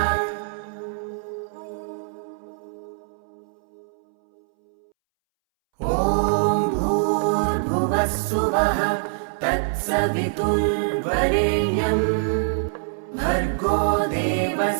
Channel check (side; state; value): left; silent; 63 dB below the other